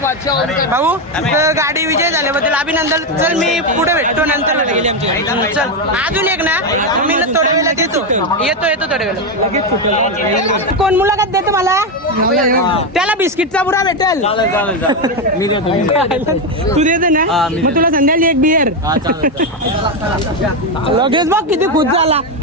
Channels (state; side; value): normal; both; correlation 0.08